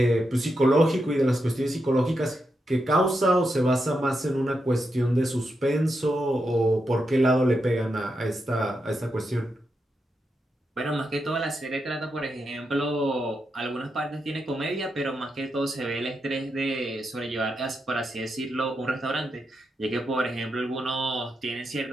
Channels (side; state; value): both; normal; correlation 0.85